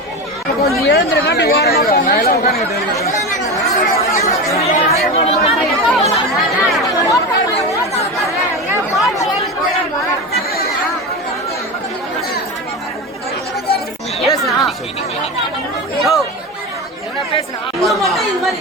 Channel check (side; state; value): both; normal; correlation 0.22